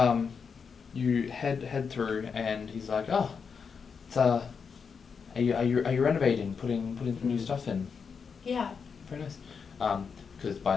You head through, and he's like, "Oh, it's are you renovating, putting some new stuff in?" Yeah. Very nice. Because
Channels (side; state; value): right; quieter; 5.9 dB